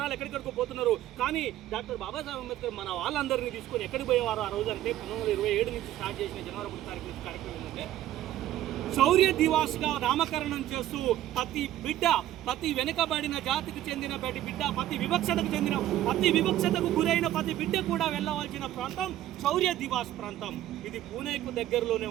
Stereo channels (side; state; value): left; quieter; 13.3 dB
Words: ఎక్కడికెక్కడికో పోతున్నారు. కానీ డాక్టర్ బాబాసాహెబ్ అంబేద్కర్ మన వాళ్ళందరినీ తీసుకొని ఎక్కడికి పోయేవారు ఆ రోజు అంటే 1927 నుంచి స్టార్ట్ చేసిన జనవరి 1వ తారీఖు నుంచి కార్యక్రమం ఏంటంటే శౌర్య దివాస్గా నామకరణం చేస్తూ ప్రతి వెనుకబడిన జాతికి చెందిన బిడ్డ, ప్రతి వివక్షతకు గురైన ప్రతి బిడ్డ కూడా వెళ్ళవలసిన ప్రాంతం శౌర్య దివాస్ ప్రాంతం. ఇది పూణేకు దగ్గరలోనే